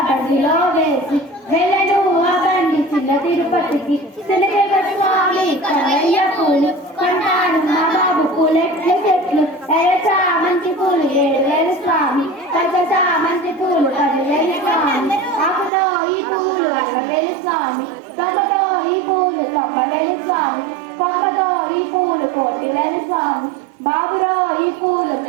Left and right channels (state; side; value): drops out; left; at 15.7 s